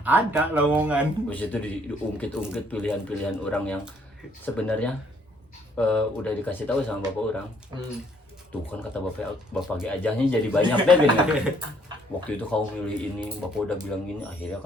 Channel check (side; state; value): both; normal; correlation 0.65